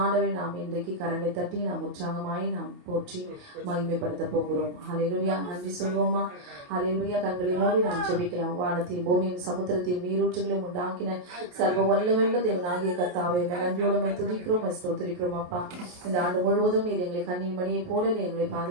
நாம் இன்றைக்கு கரங்களை தட்டி நாம் உற்சாகமாய் நாம் போற்றி மகிமைப்படுத்த போகிறோம். ஹல்லேலூயா. நன்றி சொல்வோமா? ஹல்லேலூயா. கண்களை மூடி நாம் ஜெபிக்கலாம். வானத்தையும் பூமியும் சமுத்திரத்தையும் நீரூற்றுகளையும் உண்டாக்கின சர்வ வல்லமையுள்ள தேவனாகிய கர்த்தாவே, நன்றியோடு துதிக்கிறோம், ஸ்தோத்திரிக்கிறோம். அப்பா, இந்த ஆண்டு முழுவதும் நீர் எங்களை கண்ணின் மணியை போல நீ எங்களை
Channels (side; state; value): left; late; 28 ms